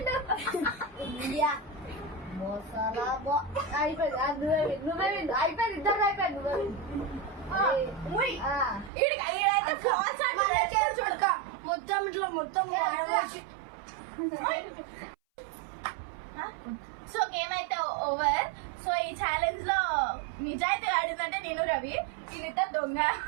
ఇండియా మోసాలా అయిపోయింది నువ్వే అయిపోయింది ఇద్దరు అయిపోయింది మొత్తం ఇట్లా మొత్తం సో గేమ్ అయితే ఓవర్. సో ఈ ఛాలెంజ్ లో నిజాయితీ ఆడిందంటే నేను రవి, దీనితో దొంగ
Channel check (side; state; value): left; drops out; at 8.9 s